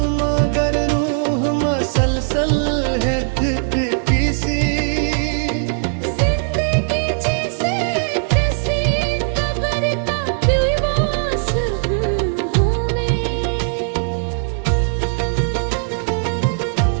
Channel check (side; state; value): left; silent; digital silence